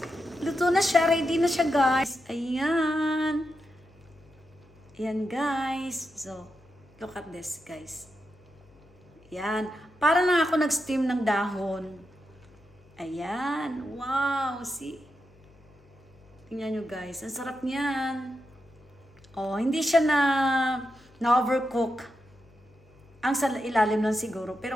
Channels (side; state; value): left; noise; hum, 29 dB below the sound